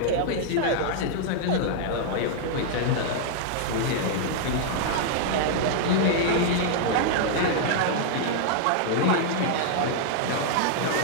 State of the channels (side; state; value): both; different; correlation -0.01